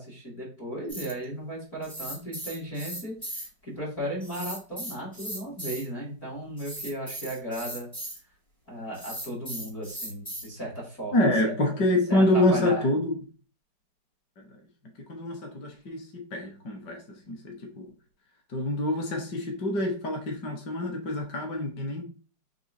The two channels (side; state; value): right; late; 5.1 ms